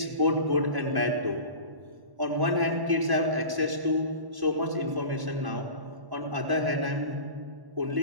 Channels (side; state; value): left; late; 1.1 ms